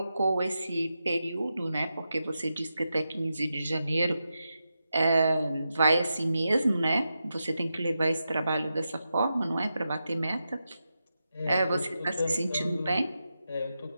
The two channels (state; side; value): inverted; both; correlation -0.89